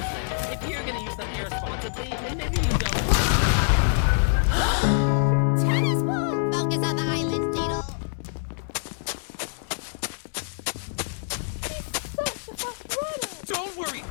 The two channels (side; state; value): right; silent; digital silence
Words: useless. If you're gonna use them irresponsibly, then maybe you don't. Tennis ball! Focus on the island, Needle. Don't worry,